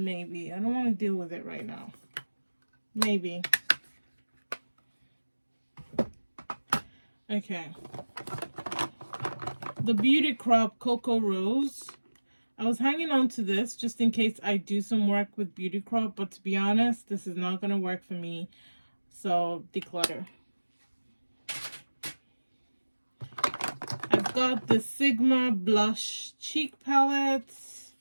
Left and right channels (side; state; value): both; inverted; correlation -1.00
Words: maybe. I don't want to deal with it right now. Maybe. Okay. The Beauty Crop Cocoa Rose. I was hanging on to this just in case I do some work with Beauty Crop, but to be honest, this is not going to work for me. So, declutter. I've got the Sigma Blush Cheek Palette.